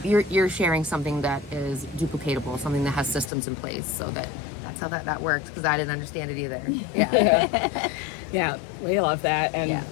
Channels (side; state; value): right; drops out; at 3.3 s